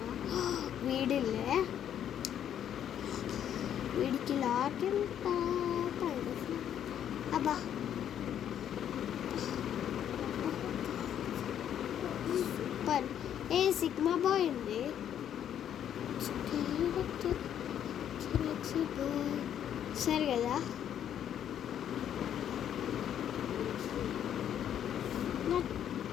వీడికి లాక్ ఎంత అబ్బా. సూపర్. సిగ్మా బాయ్ ఉంది. సరే కదా, నా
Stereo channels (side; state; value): right; quieter; 9.8 dB